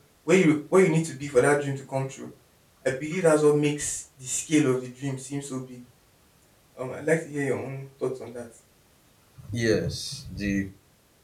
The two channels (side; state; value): both; identical; correlation 1.00